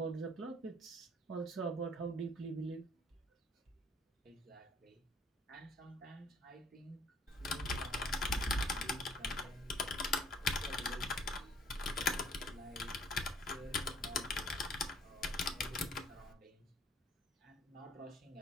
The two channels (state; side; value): normal; both; correlation 0.58